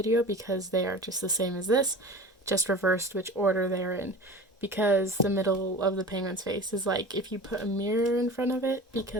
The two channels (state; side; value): normal; both; correlation 0.36